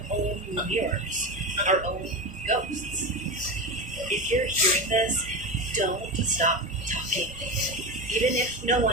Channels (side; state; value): both; normal; correlation 0.21